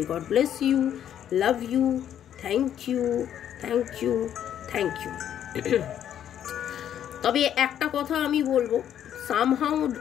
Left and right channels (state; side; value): quieter; right; 10.1 dB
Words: God bless you, love you, thank you. তবে একটা কথা আমি বলবো, সামহাউ